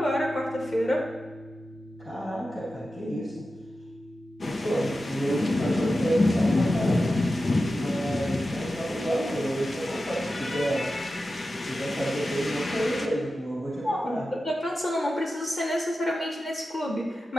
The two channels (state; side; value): normal; both; correlation 0.92